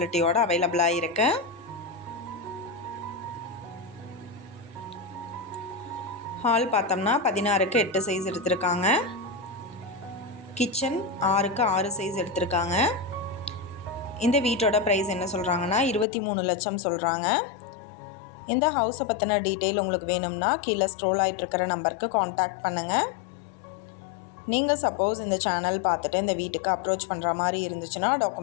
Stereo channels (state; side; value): drops out; right; at 16.1 s